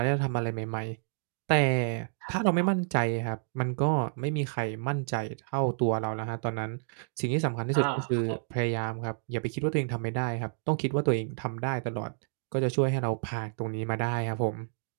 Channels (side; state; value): left; silent; digital silence